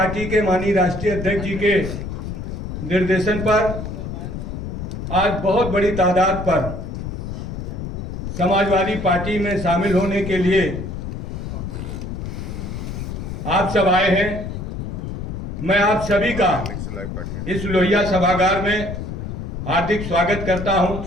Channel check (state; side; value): noise; left; rumble, 6 dB below the sound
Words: के माननीय राष्ट्रीय अध्यक्ष जी के निर्देशन पर आज बहुत बड़ी तादाद पर समाजवादी पार्टी में शामिल होने के लिए आप सब आए हैं। मैं आप सभी का इस लोहिया सभागार में हार्दिक स्वागत करता हूं,